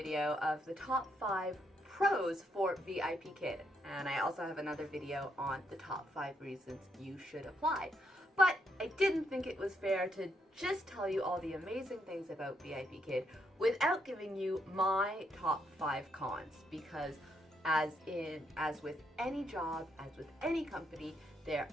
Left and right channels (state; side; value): normal; both; correlation 0.77